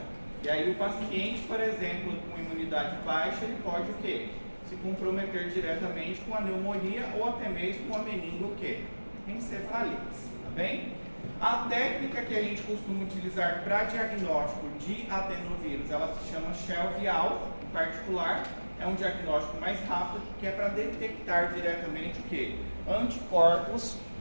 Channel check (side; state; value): both; inverted; correlation -1.00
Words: E aí o paciente, por exemplo, com imunidade baixa, ele pode o quê? Se comprometer diretamente com a pneumonia ou até mesmo com a meningoencefalite, tá bem? A técnica que a gente costuma utilizar para diagnóstico de adenovírus, ela se chama Shell-Vial, em particular, é um diagnóstico mais rápido, que é para detectar diretamente o quê? Anticorpos